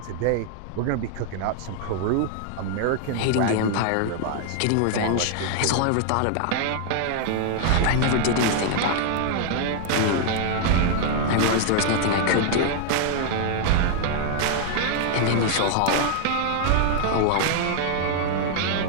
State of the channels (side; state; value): both; different; correlation 0.00